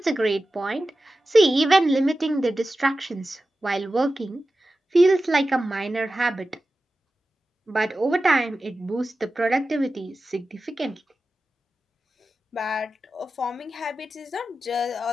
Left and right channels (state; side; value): normal; both; correlation 0.94